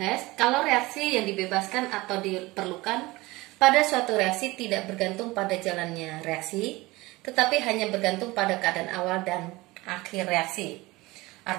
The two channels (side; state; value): left; quieter; 21.0 dB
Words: kalau reaksi yang dibebaskan atau diperlukan pada suatu reaksi tidak bergantung pada jalannya reaksi, tetapi hanya bergantung pada keadaan awal dan akhir reaksi.